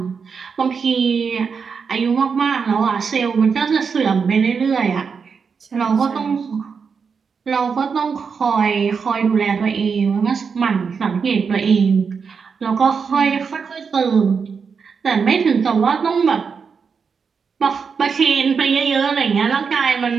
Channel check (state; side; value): quieter; left; 5.8 dB